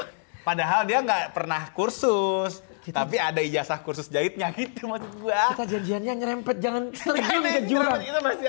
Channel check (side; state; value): right; silent; 61 dB below the other